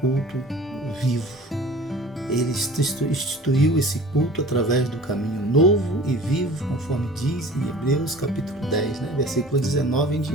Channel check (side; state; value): both; normal; correlation 0.44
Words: vivo. Ele instituiu esse culto através do caminho novo e vivo, conforme diz em Hebreus capítulo 10, versículo 19 em